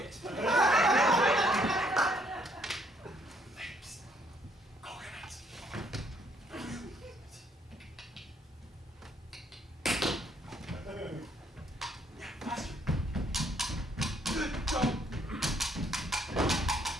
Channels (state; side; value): normal; both; correlation 0.68